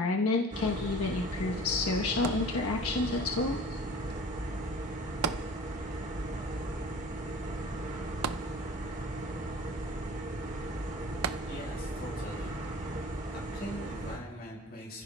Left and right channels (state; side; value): normal; both; correlation 0.42